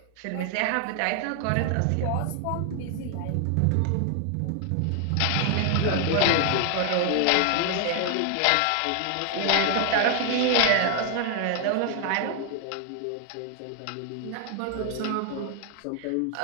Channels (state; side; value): different; both; correlation 0.00